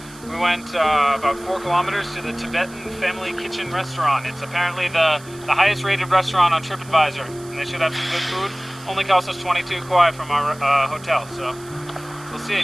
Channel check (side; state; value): right; noise; hiss, 21 dB below the sound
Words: we went about 4 kilometers to the Tibetan Family Kitchen restaurant. It's apparently the highest rated restaurant on TripAdvisor, and they should have some good food. Only cost us 22 kuai from our hotel, so we'll